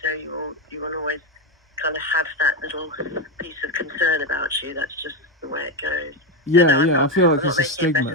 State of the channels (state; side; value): normal; both; correlation 0.11